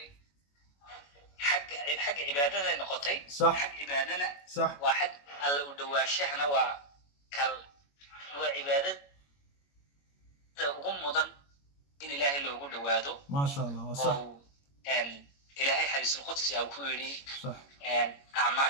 حق عبادنا نقطي صح حق عبادنا صح واحد الله ودواشحنا وكل وعبادة وغمضا إن إلهي اللي وجود وادو ما شاء الله صح أن إلهي حديث القدس أو كوري صح أن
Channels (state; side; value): late; right; 21 ms